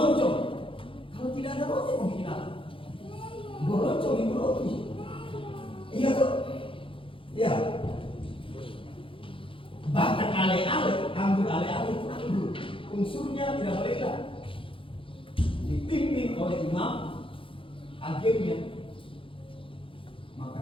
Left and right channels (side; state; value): right; late; 0.25 ms